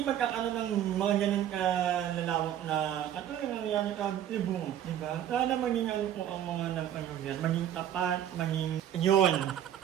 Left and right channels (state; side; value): quieter; left; 10.6 dB